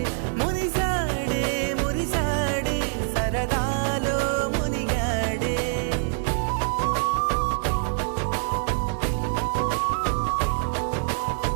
మురిసాడే మురిసాడే సరదాలో మునిగాడే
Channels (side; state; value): left; silent; digital silence